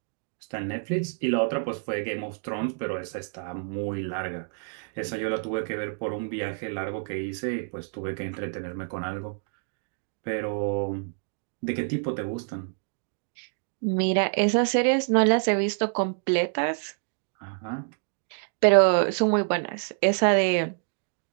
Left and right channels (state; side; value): silent; left; 60 dB below the other